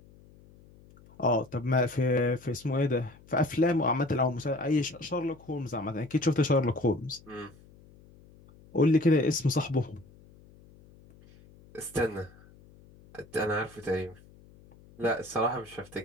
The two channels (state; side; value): noise; left; hum, 25 dB below the sound